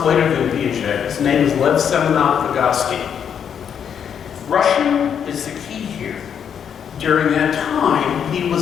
later than Piaget, his name is Lev Semenov Vygotsky. Russian is the key here. During that time, he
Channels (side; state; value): right; quieter; 8.0 dB